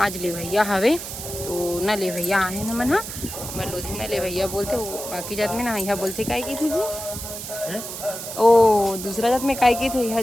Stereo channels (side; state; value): right; noise; hiss, 8 dB below the sound